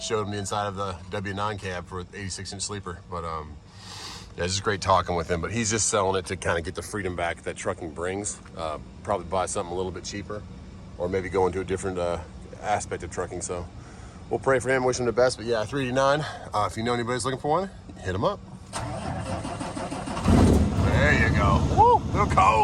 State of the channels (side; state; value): both; identical; correlation 1.00